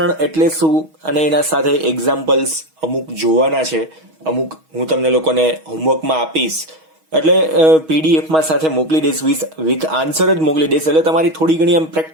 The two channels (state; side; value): late; left; 6.3 ms